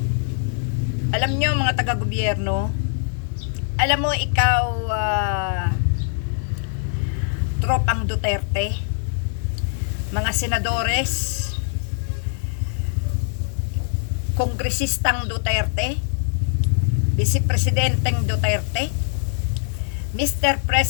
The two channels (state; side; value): silent; right; digital silence